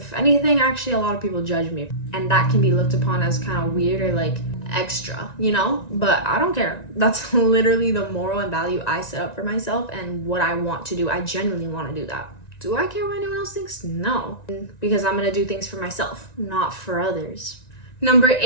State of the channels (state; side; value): late; right; 1.9 ms